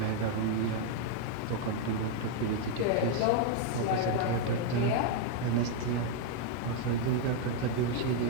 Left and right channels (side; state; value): both; different; correlation 0.01